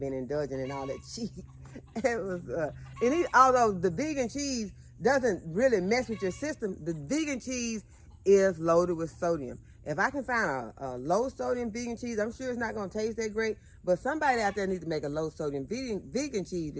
indulging in all that cheese. It was, although the vegan cheese doesn't really mess with your system, the vegan cheese is loaded with sodium. If I can find a low sodium vegan cheese, I'm sure it's not going to taste that great, but somebody out there needs to make a low sodium vegan cheese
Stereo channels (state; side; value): identical; both; correlation 1.00